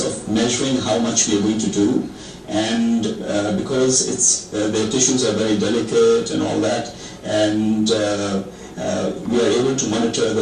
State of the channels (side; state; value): both; identical; correlation 1.00